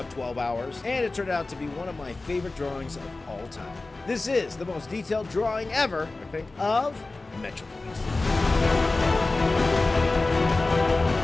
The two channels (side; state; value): right; quieter; 3.3 dB